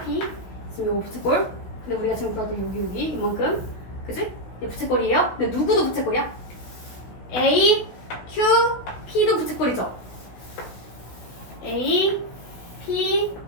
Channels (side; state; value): right; late; 16 ms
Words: P. 지금 요거 부채꼴. 근데 우리가 지금 보았던 여기 이만큼. 그치? 얘 부채꼴이에요. 근데 누구도 부채꼴이야? A, Q, P도 부채꼴이죠. A, P,